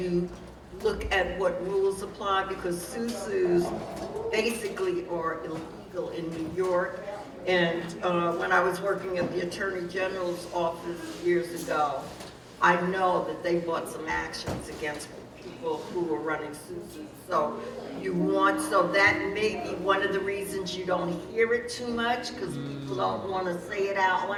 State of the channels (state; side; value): identical; both; correlation 1.00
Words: look at what rules apply, because SUSUs basically are illegal in New York. And when I was working at the Attorney General's office years ago, I know that they brought some actions against people who were running SUSUs. So so that may be one of the reasons you don't hear it too much, because people don't want to say it out